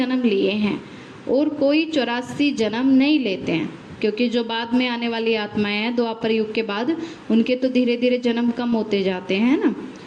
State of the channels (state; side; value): identical; both; correlation 1.00